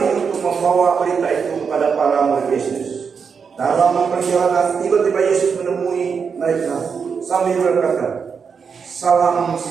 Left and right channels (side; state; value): left; quieter; 6.1 dB